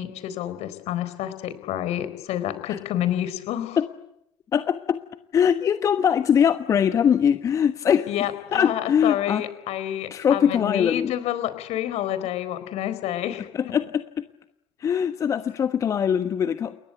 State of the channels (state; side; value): quieter; right; 8.4 dB